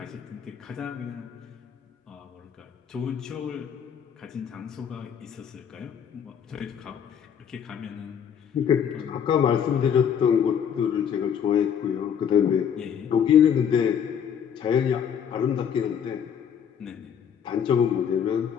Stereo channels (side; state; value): right; quieter; 8.1 dB